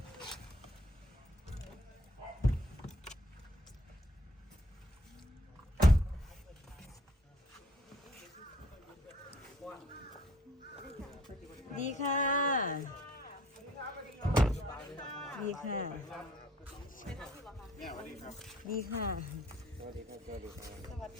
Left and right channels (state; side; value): normal; both; correlation 0.58